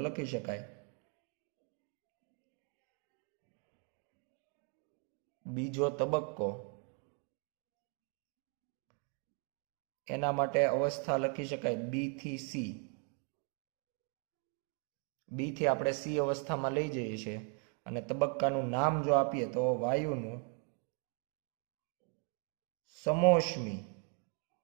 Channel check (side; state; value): left; quieter; 38.8 dB